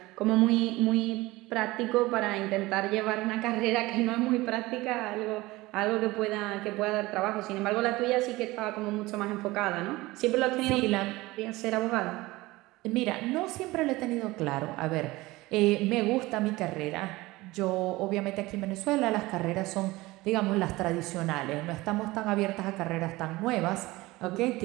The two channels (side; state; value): left; quieter; 20.1 dB